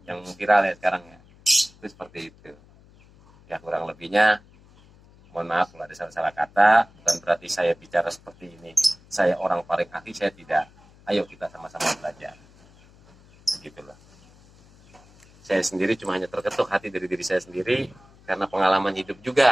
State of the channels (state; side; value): noise; left; hum, 26 dB below the sound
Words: Yang viral ya sekarang ya. Itu seperti itu. Ya kurang lebihnya, mohon maaf kalau ada salah-salah kata, bukan berarti saya bicara seperti ini. Saya orang paling ahli, saya tidak. Ayo kita sama-sama belajar. Begitulah. Saya sendiri cuma hanya terketuk hati dari diri saya sendiri karena pengalaman hidup